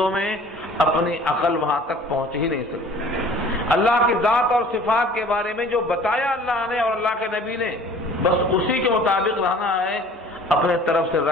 میں اپنی عقل وہاں تک پہنچ ہی نہیں سکتی۔ اللہ کی ذات اور صفات کے بارے میں جو بتایا اللہ نے اور اللہ کے نبی نے، بس اسی کے مطابق رہنا ہے، اپنے طرف سے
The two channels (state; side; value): normal; both; correlation 0.48